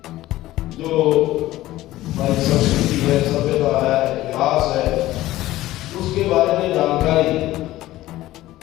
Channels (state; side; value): quieter; right; 16.0 dB